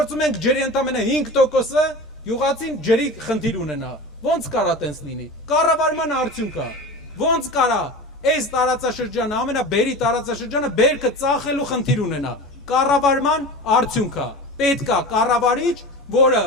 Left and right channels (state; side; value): normal; both; correlation 0.32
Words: ենք ջրի ընդամենը 5%-ը, յուղացին ջրի խնդիր ունենա։ Ոնց կարա տենց լինի։ Կառավարման արդյունք է։ Ոնց կարա այս տարածաշրջանը, ամենաբերի տարածաշրջանը բերքը ծախելու խնդիր ունենա։ Կառավարման արդյունք է։ Պետք է կառավարիչ, որը